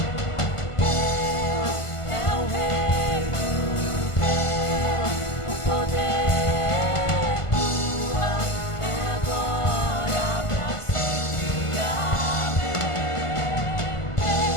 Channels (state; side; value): late; right; 1.5 ms